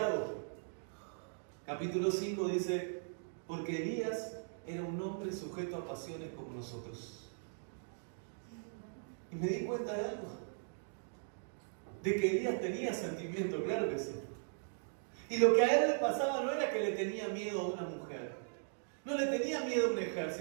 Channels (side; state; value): left; silent; digital silence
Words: Capítulo 5 dice, porque Elías era un hombre sujeto a pasiones como nosotros. Y me di cuenta de algo. De que Elías tenía sentimiento, claro que sí. Y lo que a él le pasaba no era que le tenía miedo a una mujer. No le tenía miedo a un